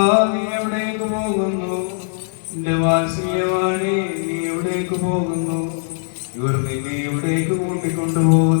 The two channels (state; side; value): silent; right; 66 dB below the other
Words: നീ എവിടേക്ക് പോകുന്നു? എന്റെ വാത്സല്യവാണി നീ എവിടേക്ക് പോകുന്നു? ഇവർ നിന്നെ എവിടേക്ക്